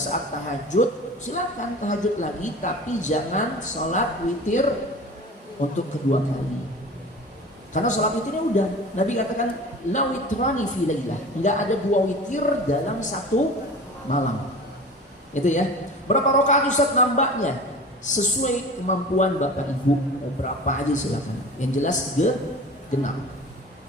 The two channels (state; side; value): normal; both; correlation 0.38